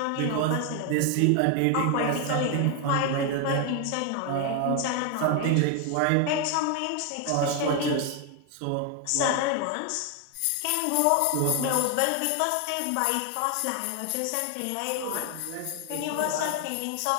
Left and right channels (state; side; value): different; both; correlation 0.01